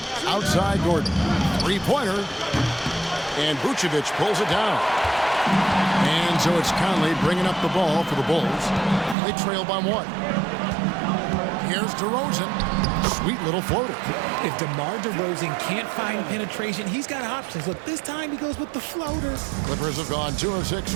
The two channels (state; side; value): drops out; left; at 9.2 s